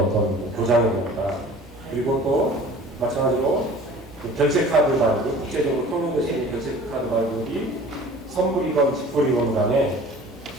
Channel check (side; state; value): both; normal; correlation 0.46